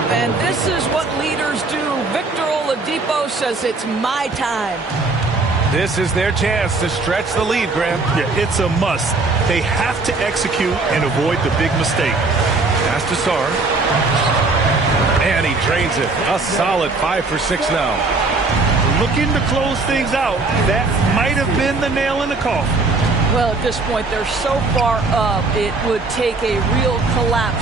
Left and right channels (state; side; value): quieter; left; 3.6 dB